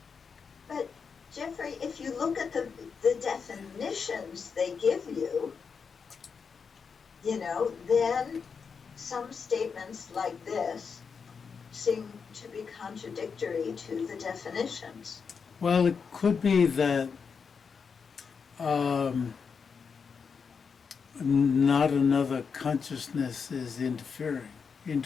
But Jeffrey, if you look at the definitions they give you, you know, then some statements like this seem to be contradictory to the definitions. Well, it could be that not another consciousness is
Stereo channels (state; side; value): quieter; right; 5.8 dB